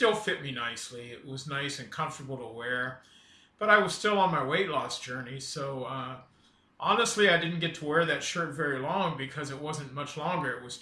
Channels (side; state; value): both; identical; correlation 1.00